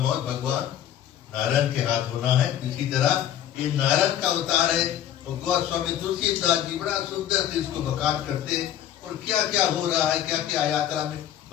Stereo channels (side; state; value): right; quieter; 10.9 dB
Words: भगवान नारायण के हाथ होना है। इसी तरह ये नारायण का अवतार है। तो गोस्वामी तुलसीदास जी बड़ा सुंदर से इसको बखान करते हैं और क्या क्या हो रहा है, क्या क्या यात्रा में